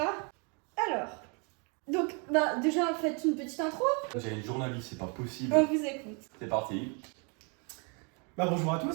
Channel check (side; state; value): left; quieter; 35.1 dB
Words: Alors. Donc, déjà, faites une petite intro. J'ai une journaliste, c'est pas possible. On vous écoute. C'est parti. Bonjour à